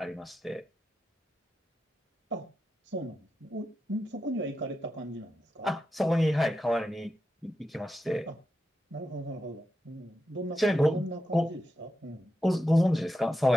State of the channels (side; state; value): both; normal; correlation 0.88